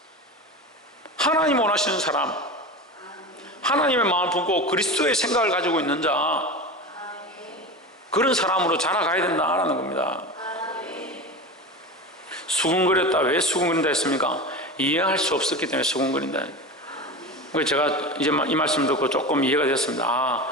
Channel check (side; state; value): both; normal; correlation 0.27